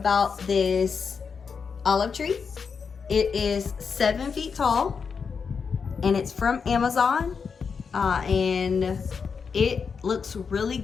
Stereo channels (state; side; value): quieter; right; 5.8 dB